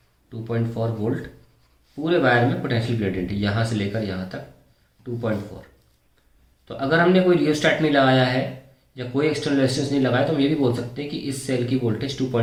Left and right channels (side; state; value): both; identical; correlation 1.00